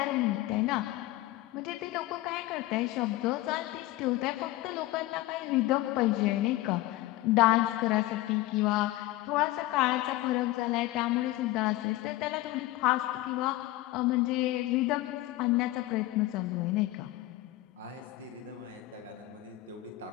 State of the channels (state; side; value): quieter; right; 17.2 dB